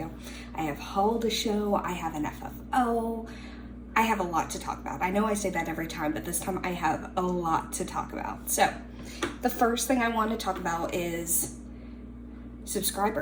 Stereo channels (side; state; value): both; identical; correlation 1.00